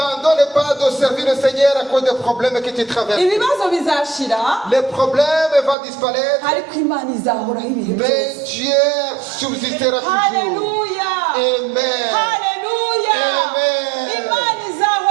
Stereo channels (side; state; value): left; drops out; at 5.8 s